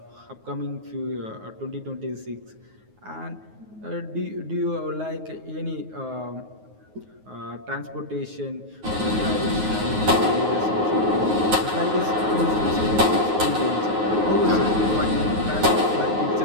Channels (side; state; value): left; late; 9.4 ms